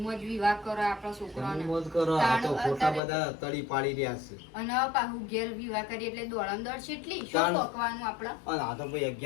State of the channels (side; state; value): right; drops out; at 3.0 s